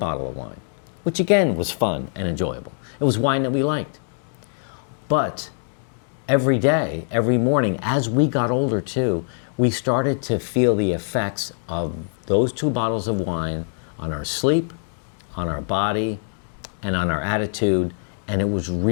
of wine, which again was fun and enjoyable. It was wine that we liked. But every day, every morning, as we got older too, we started to feel the effects of those 2 bottles of wine on our sleep, on our body, and on our attitude. And it was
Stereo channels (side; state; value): right; silent; digital silence